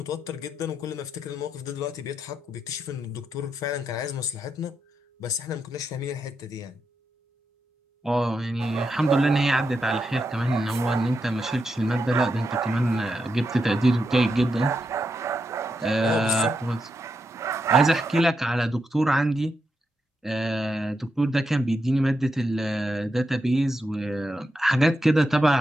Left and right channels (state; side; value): normal; both; correlation 0.84